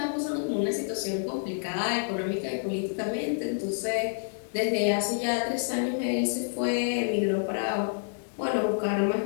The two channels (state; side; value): silent; right; 59 dB below the other